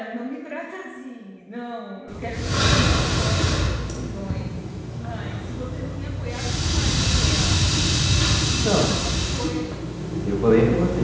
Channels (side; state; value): both; identical; correlation 1.00